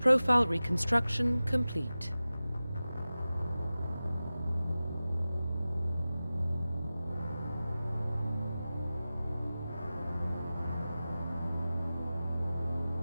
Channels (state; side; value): inverted; both; correlation -0.96